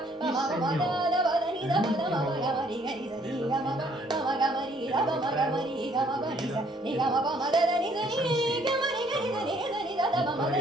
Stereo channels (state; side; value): normal; both; correlation 0.63